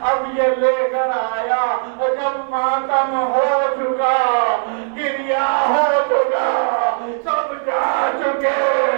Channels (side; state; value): left; silent; digital silence